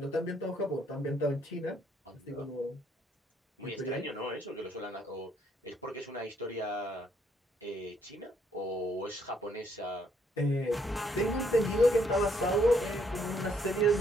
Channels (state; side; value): normal; both; correlation 0.69